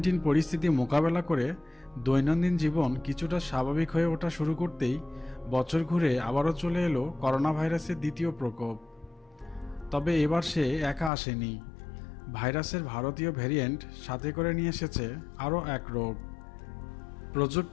পরিস্থিতি মোকাবেলা করে দৈনন্দিন জীবন কিছুটা স্বাভাবিক হয়ে ওঠা শুরু করতেই বছর ঘুরে আবারও চলে এলো করোনা ভাইরাসের দ্বিতীয় প্রকোপ। তবে এবার সে একা আসেনি। ভাইরাসের ভারতীয় ভ্যারিয়েন্ট সাথে করে নিয়ে এসেছে আরও এক রোগ।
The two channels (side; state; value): right; drops out; at 11.1 s